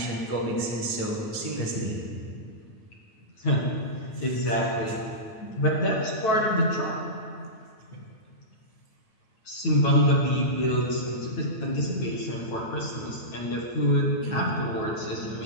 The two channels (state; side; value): late; right; 9.2 ms